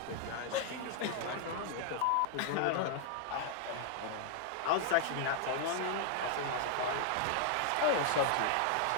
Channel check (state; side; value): different; both; correlation 0.00